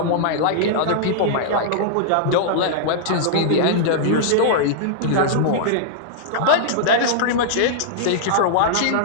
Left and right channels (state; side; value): different; both; correlation -0.02